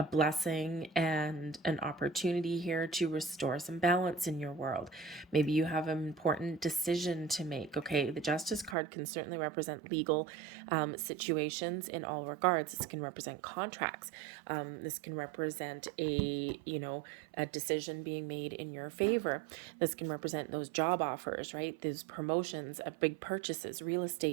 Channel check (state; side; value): drops out; left; at 8.8 s